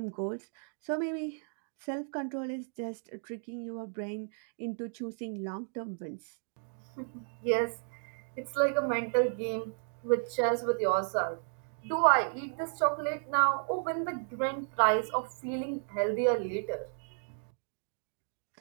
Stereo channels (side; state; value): left; silent; 55 dB below the other